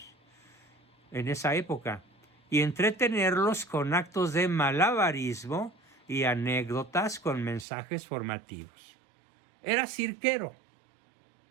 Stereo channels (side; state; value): left; drops out; at 7.7 s